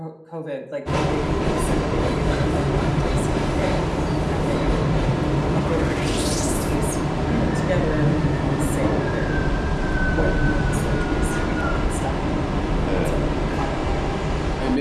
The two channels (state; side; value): identical; both; correlation 1.00